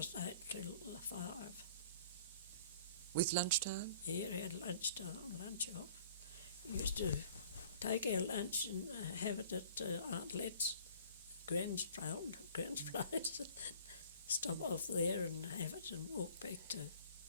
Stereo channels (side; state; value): both; inverted; correlation -0.51